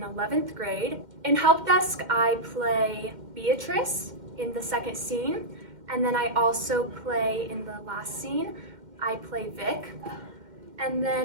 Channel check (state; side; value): late; left; 2.1 ms